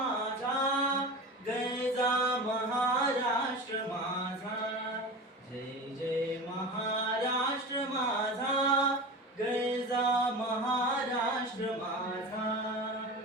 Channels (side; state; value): both; normal; correlation 0.30